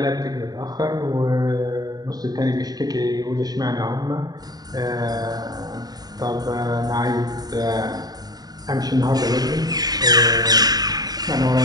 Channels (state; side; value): late; left; 0.19 ms